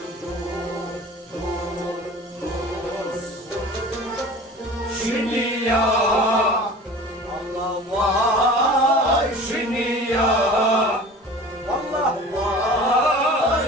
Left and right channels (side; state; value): both; normal; correlation 0.41